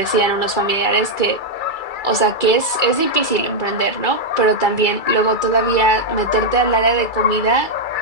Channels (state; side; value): late; right; 2.3 ms